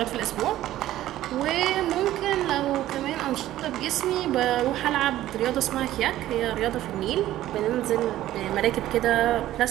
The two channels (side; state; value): left; quieter; 14.0 dB